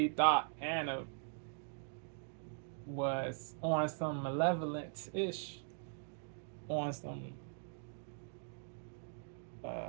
thought Anna was on some malevolent ish, on some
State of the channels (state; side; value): silent; left; digital silence